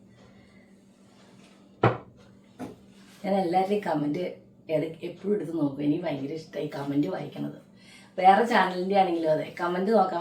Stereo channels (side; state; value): both; identical; correlation 1.00